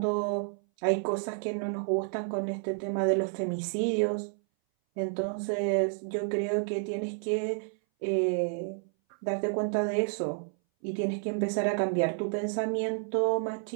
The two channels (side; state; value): left; silent; 58 dB below the other